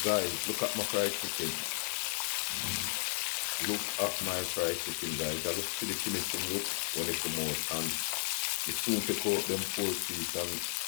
Guys, look at my fried chicken. Look at my fried chicken, guys. I just see the finishing look when they come out, and the soon take out them 4 feet, and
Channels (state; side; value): silent; right; digital silence